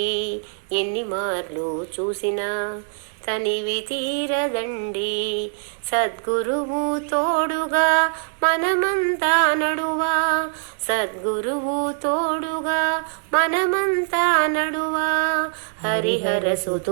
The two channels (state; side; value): silent; left; digital silence